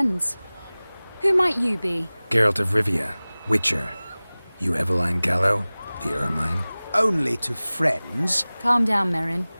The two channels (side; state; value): both; inverted; correlation -0.99